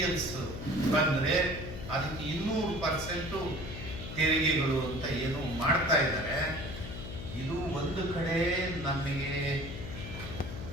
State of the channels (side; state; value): left; noise; hum, 9 dB below the sound